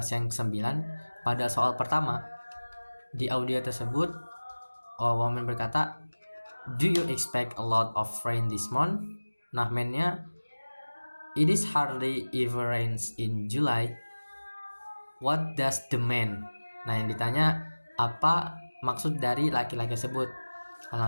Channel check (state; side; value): inverted; both; correlation -1.00